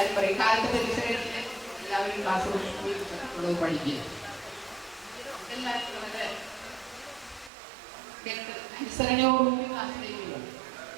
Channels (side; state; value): left; drops out; at 7.5 s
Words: പറയും, കാലത്ത് പരീക്ഷ കഴിഞ്ഞ് എല്ലാവരും ക്ലാസ് പഠിക്കുക. എല്ലാവരും വളരെ അനുസരണയോടുകൂടി ക്ലാസ്സിലേക്ക് പോകും.